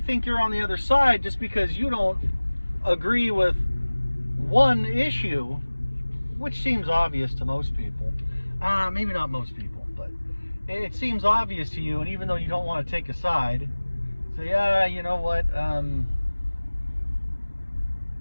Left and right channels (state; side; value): inverted; both; correlation -1.00